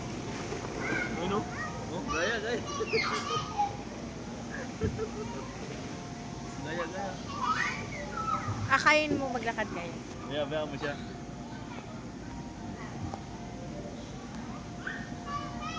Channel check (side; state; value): both; identical; correlation 1.00